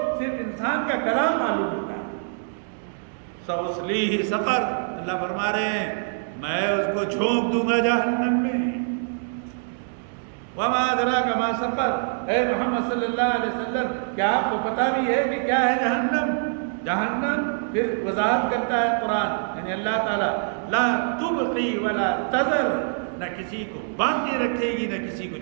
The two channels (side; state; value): left; silent; digital silence